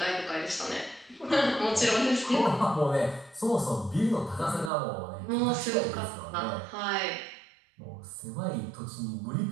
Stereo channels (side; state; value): left; drops out; at 4.7 s